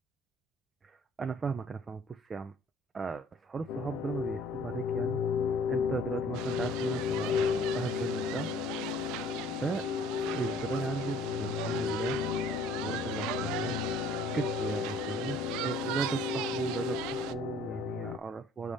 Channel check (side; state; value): both; normal; correlation 0.54